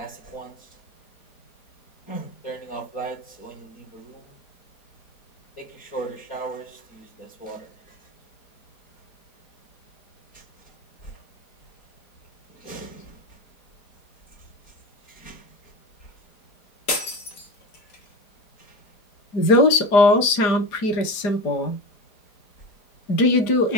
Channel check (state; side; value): late; right; 4.9 ms